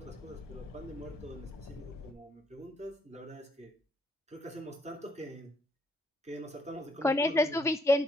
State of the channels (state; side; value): normal; both; correlation 0.70